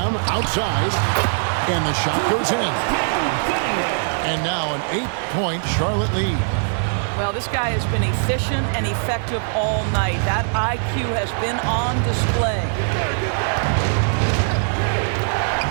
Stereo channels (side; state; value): left; silent; digital silence